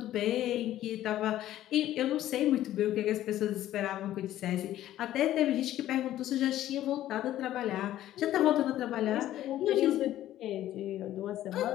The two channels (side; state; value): right; quieter; 13.3 dB